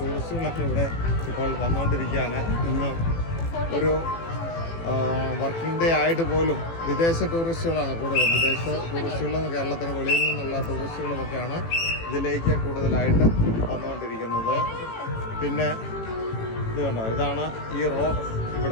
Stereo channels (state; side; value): late; right; 18 ms